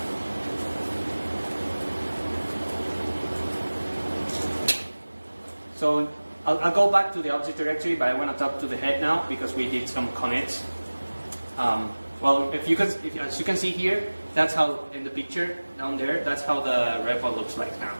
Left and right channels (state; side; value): inverted; both; correlation -1.00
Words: So I'll go back to the object directory, but I want to talk to the head now because we did some commits. Well, as you can see here, that's how in the picture down there, that's how the repo looks like now.